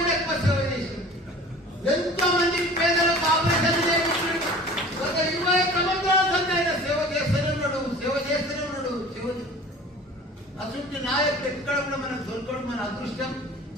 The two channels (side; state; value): both; normal; correlation 0.43